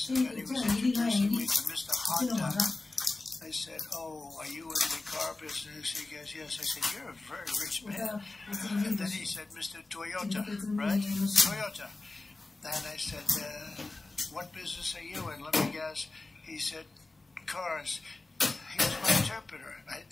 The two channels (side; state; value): right; quieter; 3.2 dB